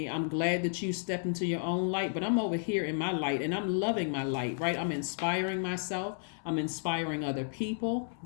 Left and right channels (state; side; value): silent; right; 56 dB below the other